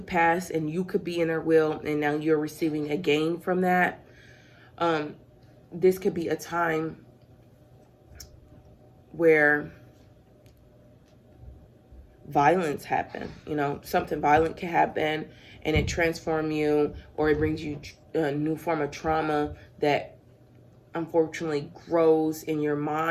pass and you could be in their will, and now you're receiving a gain from that. This could be a time where violence happen. You know, something violent can happen and it transforms you, or it brings you a new form of trauma that unfortunately grows in your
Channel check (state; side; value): identical; both; correlation 1.00